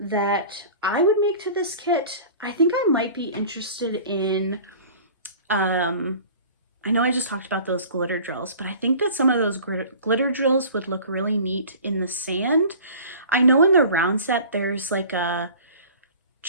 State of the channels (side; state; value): both; inverted; correlation -0.43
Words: I would make to this kit, I think I might be interested in, I know I just talked about those glitter drills, but I think that some of those glitter drills would look really neat in the sand. I know in the round set, there's like a